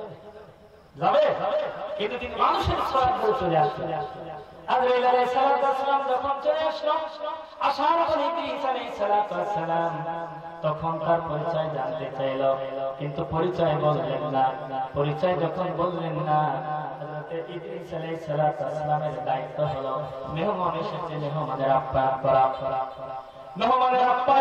যাবে, কিন্তু তিনি মানুষের সওয়াব করে চলে আসলেন। আজরাইল আলাইহিস সালাম যখন চলে আসলো, আসার পর ইদ্রিস আলাইহিস সালাম তখন তার পরিচয় জানতে চাইল, কিন্তু পরিচয় বললেন না। পরিচয় যখন বললেন না, ইদ্রিস আলাইহিস সালামের দায়িত্ব হলো মেহমান এসেছে, মেহমানের আপ্যায়ন করা। মেহমানের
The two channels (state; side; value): identical; both; correlation 1.00